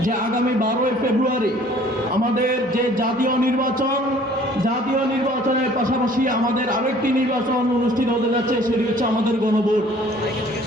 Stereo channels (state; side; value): normal; both; correlation 0.54